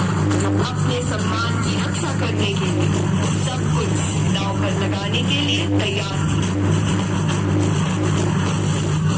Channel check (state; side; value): identical; both; correlation 1.00